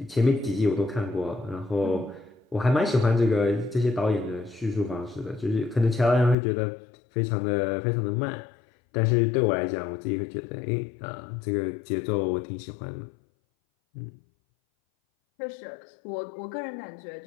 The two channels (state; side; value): drops out; right; at 6.4 s